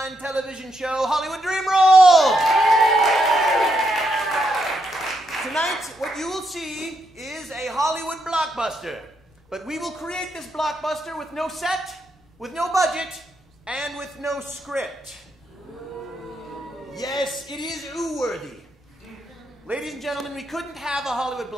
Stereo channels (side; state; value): both; normal; correlation 0.79